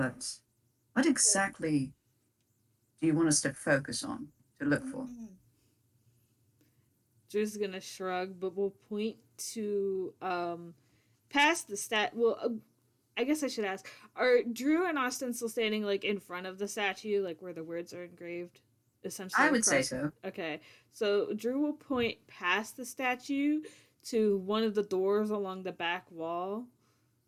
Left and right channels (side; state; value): both; identical; correlation 1.00